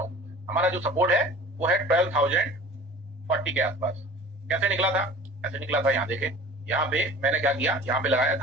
हूँ, हमारा जो सपोर्ट है वो है 12,040 के आसपास। कैसे निकला था? ऐसे निकला था, यहाँ देखे, यहाँ पे मैंने क्या किया, यहाँ पे लगाया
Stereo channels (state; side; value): normal; both; correlation 0.42